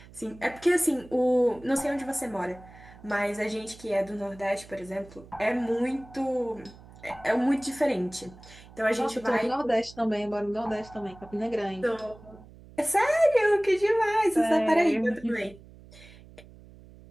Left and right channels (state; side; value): noise; right; hum, 21 dB below the sound